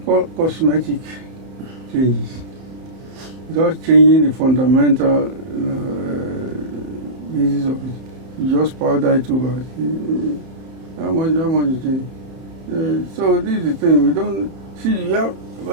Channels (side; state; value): left; late; 31 ms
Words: called cosmetic changes. Without changing the fundamental basis of it, you just powder it over. How much you change? So this is the thing, we don't see.